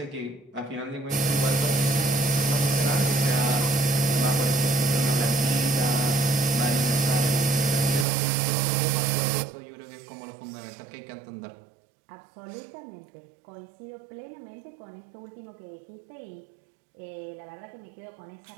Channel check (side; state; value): left; drops out; at 8.1 s